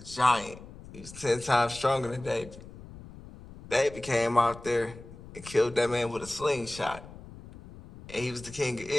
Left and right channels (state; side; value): noise; left; rumble, 17 dB below the sound